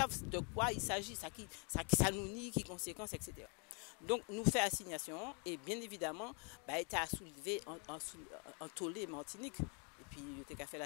de quoi il s'agit ça nous nie qui conséquences etc. Donc nous faisons assignation et bien évidemment État a soulevé en tollé Martinique et puis il a fait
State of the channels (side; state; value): right; quieter; 36.4 dB